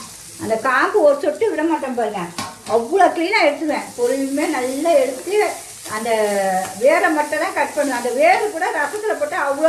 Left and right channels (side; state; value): both; identical; correlation 1.00